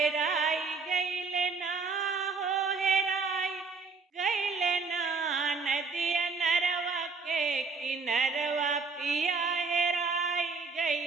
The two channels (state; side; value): quieter; left; 4.5 dB